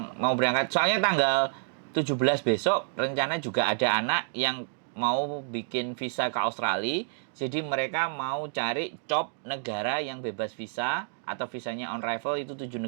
siap. Mau berangkat. Soalnya tanggal 17 besok rencana juga ada anak yang mau bikin visa ke Australia. Jadi mereka mau cari job negara yang bebas visa atau visanya on arrival itu 7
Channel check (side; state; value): left; silent; digital silence